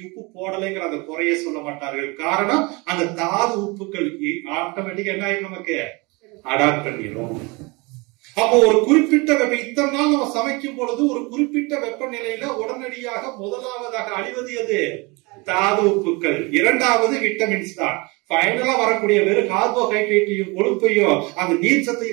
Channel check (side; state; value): left; quieter; 26.9 dB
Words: உப்பு போடலைங்கிற அந்த குறைய சொல்ல மாட்டார்கள். காரணம் அந்த தாது உப்புக்கள் ஆட்டோமேட்டிக்கா என்ன ஆயிடும், நமக்கு அடாப்ட் பண்ணிடும். அப்போ ஒரு குறிப்பிட்ட இத்தனை நாள் நம்ம சமைக்கும் பொழுது ஒரு குறிப்பிட்ட வெப்பநிலையில உடனடியாக முதலாவதாக அழிவது எது? தாது உப்புக்கள். இரண்டாவது விட்டமின்ஸ் தான். ஃபைனலா வரக்கூடிய வெறும் கார்போஹைட்ரேட்டையும் கொழுப்பையும் அந்த நீர்